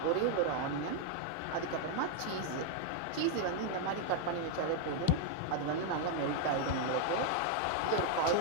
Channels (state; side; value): different; both; correlation 0.00